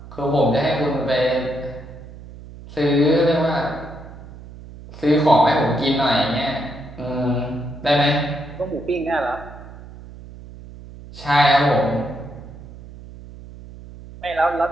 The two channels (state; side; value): noise; right; hum, 16 dB below the sound